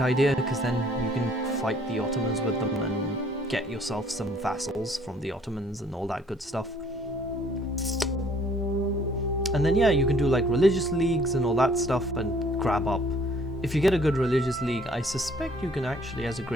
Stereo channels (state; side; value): normal; both; correlation 0.59